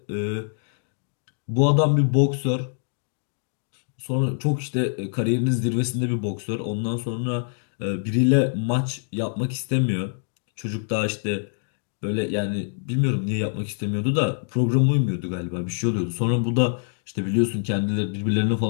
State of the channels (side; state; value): right; silent; digital silence